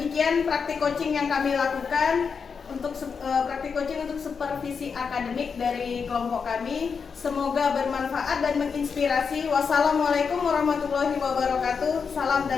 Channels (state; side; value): quieter; right; 5.8 dB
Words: praktik coaching yang kami lakukan untuk praktik coaching untuk supervisi akademik dari kelompok kami. Semoga bermanfaat dan menginspirasi. Wassalamualaikum warahmatullahi wabarakatuh. Salam